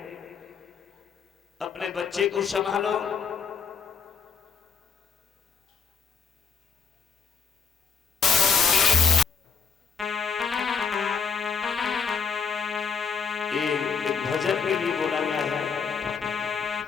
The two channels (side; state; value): right; quieter; 5.8 dB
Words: अपने बच्चे को संभालो। एक भजन के लिए बोला गया